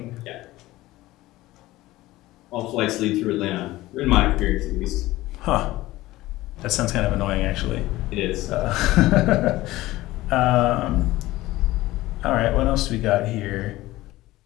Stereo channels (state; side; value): quieter; right; 17.5 dB